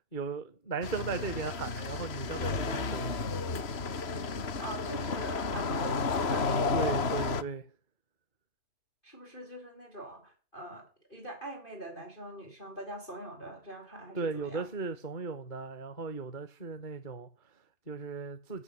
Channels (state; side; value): late; right; 3.0 ms